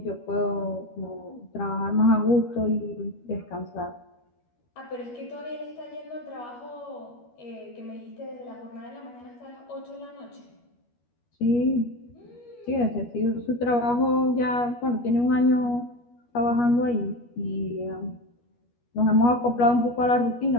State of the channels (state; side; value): late; right; 12 ms